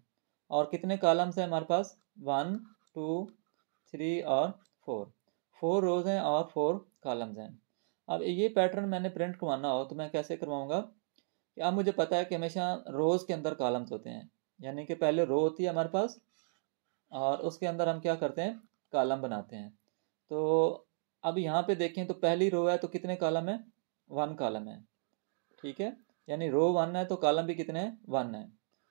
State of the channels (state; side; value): silent; left; digital silence